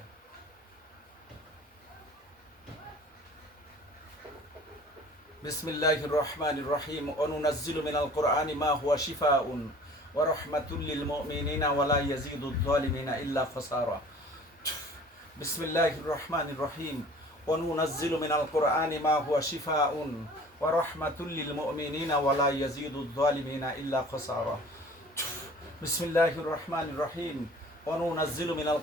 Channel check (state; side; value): normal; both; correlation 0.47